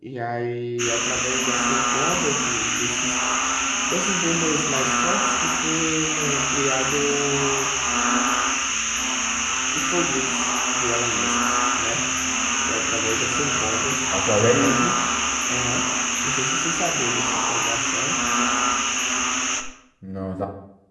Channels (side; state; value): both; identical; correlation 1.00